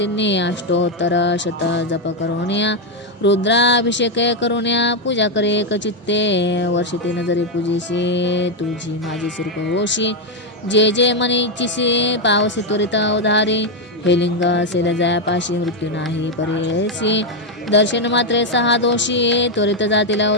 अष्टोत्तर शत जप करुण्या रुद्राभिषेक करुण्या पूजा करे एकचित्ते वर्षिते जरी पूजेशी तुझी माझी सुरूप होशी जे जे मनीचीसी पावसी त्वरित उधारी हे लिंग असेल जयापाशी मृत्यू नाही परेसी दर्शन मात्रे सहा दोषी त्वरित जातील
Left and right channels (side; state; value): both; normal; correlation 0.03